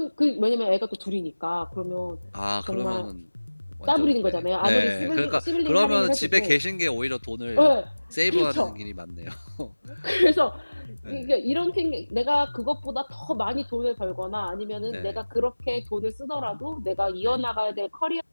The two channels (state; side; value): inverted; both; correlation -1.00